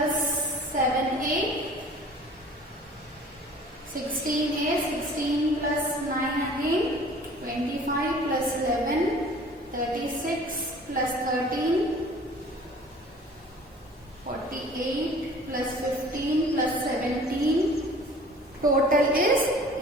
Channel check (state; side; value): normal; both; correlation 0.47